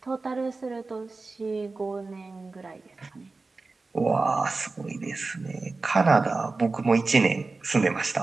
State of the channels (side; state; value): left; quieter; 3.7 dB